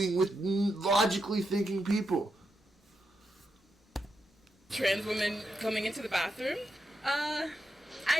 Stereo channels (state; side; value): normal; both; correlation 0.85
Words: with logically thinking people. Trans women coming into the bathroom? I